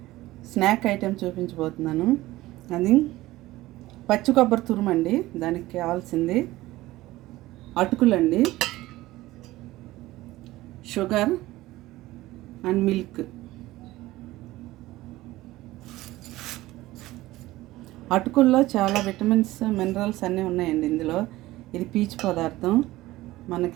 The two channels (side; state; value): left; quieter; 17.5 dB